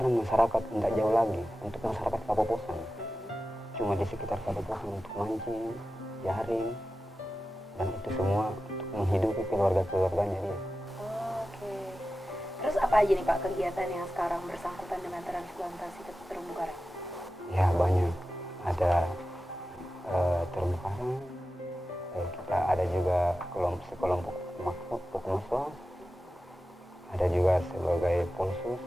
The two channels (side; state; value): both; normal; correlation 0.93